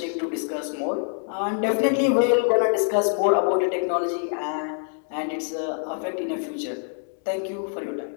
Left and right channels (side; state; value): right; silent; 62 dB below the other